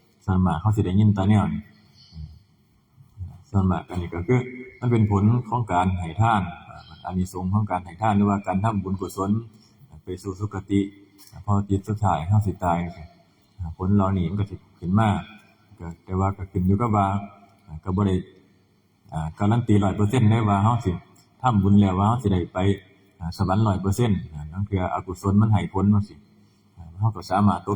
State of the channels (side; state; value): both; identical; correlation 1.00